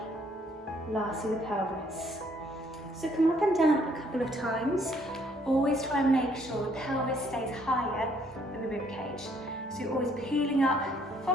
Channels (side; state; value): both; normal; correlation 0.65